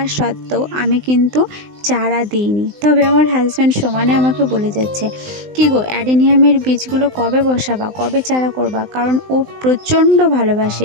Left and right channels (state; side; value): late; left; 19 ms